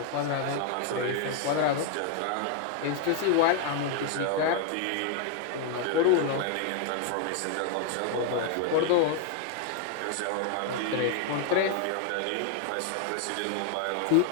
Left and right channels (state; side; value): different; both; correlation 0.00